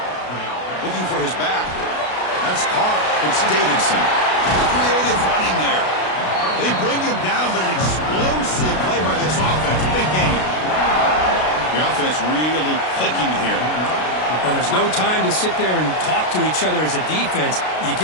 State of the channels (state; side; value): late; right; 32 ms